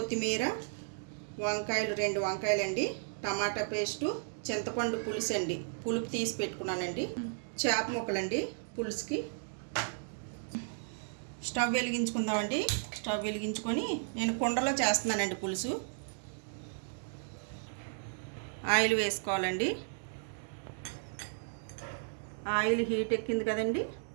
వంకాయలు 2 వంకాయలండి, టమాటా పేస్టు, చింతపండు పులుసు అండి, పులుపు తీసి పెట్టుకున్నానండి, చేప ముక్కలండి పులుసుకి. స్టవ్ వెలిగించుకుందామండి. స్టవ్ వెలిగించుకొని నేను కుండలో చేస్తున్నానండి పులుసు. ఆయిల్ వేసుకోవాలండి. ఆయిల్ హీట్ ఎక్కింది కదండి,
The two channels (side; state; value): left; silent; digital silence